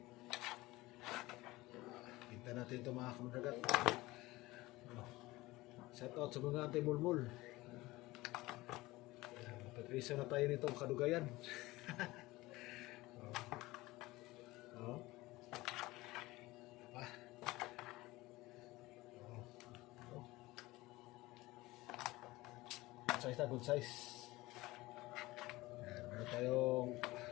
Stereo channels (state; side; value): quieter; right; 19.7 dB